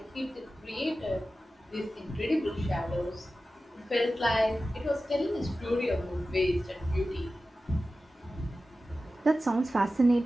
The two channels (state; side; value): normal; both; correlation 0.94